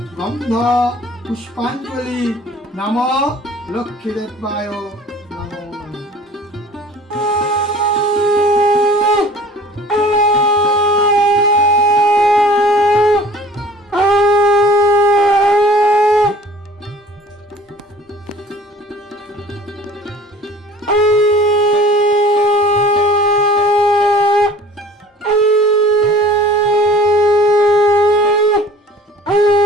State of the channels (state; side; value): normal; both; correlation 0.47